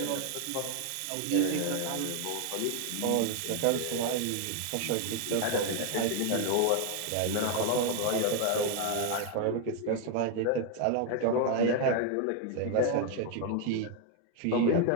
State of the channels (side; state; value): both; different; correlation 0.00